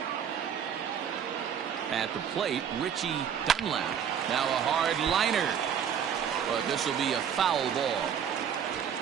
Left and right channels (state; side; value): quieter; left; 8.2 dB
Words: At the plate, Richie Dunlap. Now a hard liner. But this will be a foul ball.